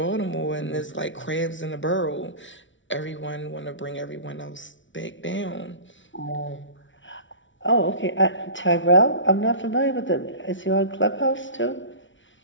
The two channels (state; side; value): late; right; 0.56 ms